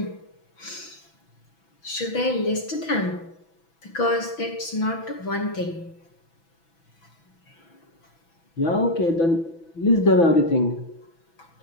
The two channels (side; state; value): right; late; 6.0 ms